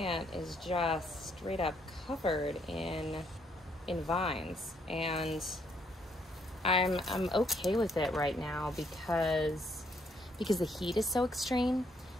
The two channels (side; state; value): both; normal; correlation 0.71